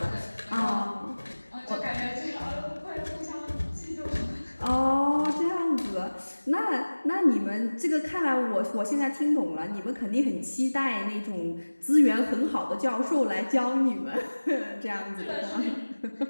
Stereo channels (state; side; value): inverted; both; correlation -1.00